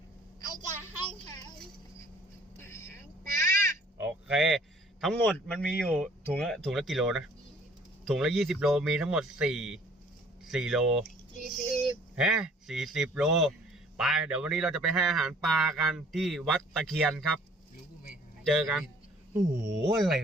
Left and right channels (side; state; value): both; normal; correlation 0.55